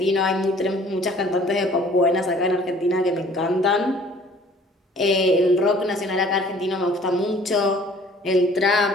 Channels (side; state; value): both; normal; correlation 0.53